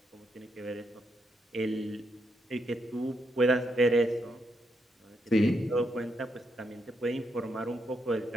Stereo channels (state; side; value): normal; both; correlation 0.80